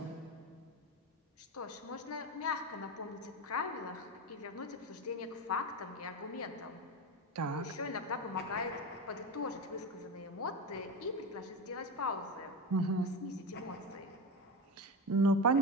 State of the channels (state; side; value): normal; both; correlation 0.20